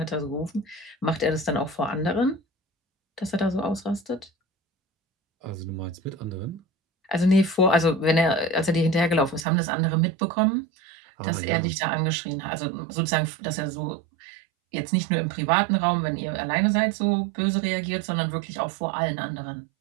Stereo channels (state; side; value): drops out; left; at 9.5 s